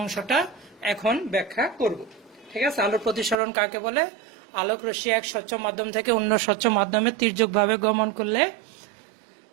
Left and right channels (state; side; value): drops out; left; at 3.4 s